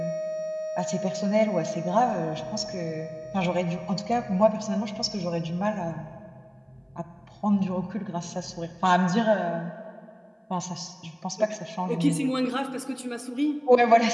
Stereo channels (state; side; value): identical; both; correlation 1.00